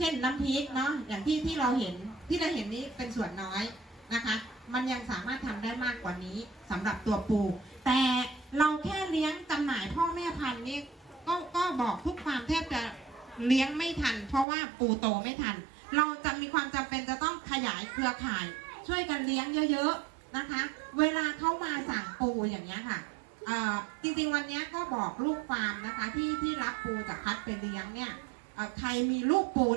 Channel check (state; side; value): drops out; left; at 14.5 s